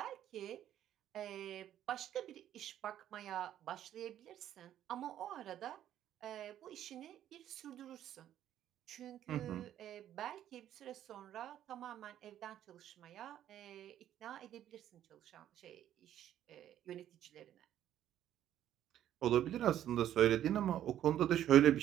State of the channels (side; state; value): left; quieter; 11.4 dB